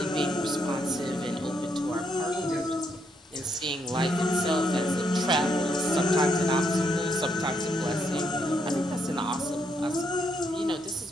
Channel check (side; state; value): both; normal; correlation 0.76